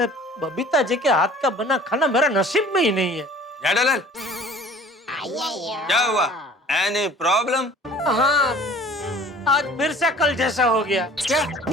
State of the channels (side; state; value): both; normal; correlation 0.48